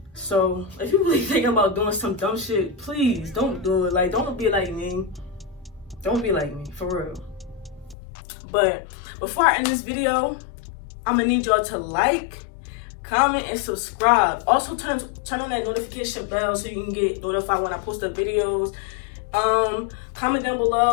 So if you're really thinking about doing some dumb shit, please don't do it. Like, don't be like me. Don't be like me, for real. But before I end this video, I'm gonna need y'all to like, comment, and subscribe. Also turn on that notification bell so you can get notified when I post up videos. Comment down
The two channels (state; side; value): drops out; right; at 8.0 s